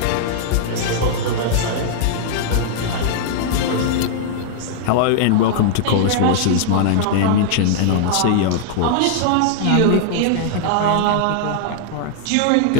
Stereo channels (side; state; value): both; different; correlation -0.01